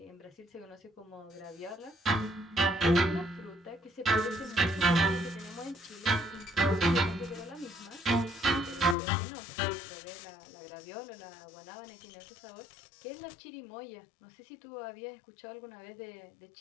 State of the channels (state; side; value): drops out; right; at 9.0 s